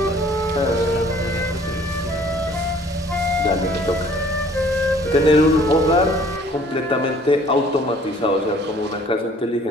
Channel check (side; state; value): both; normal; correlation 0.55